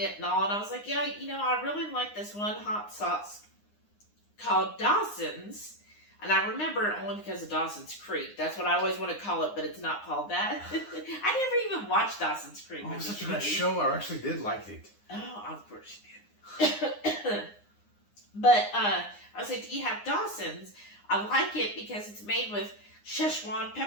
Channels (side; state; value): right; late; 9.7 ms